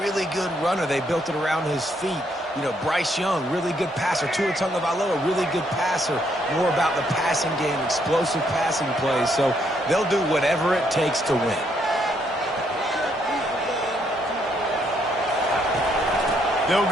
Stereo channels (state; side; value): normal; both; correlation 0.72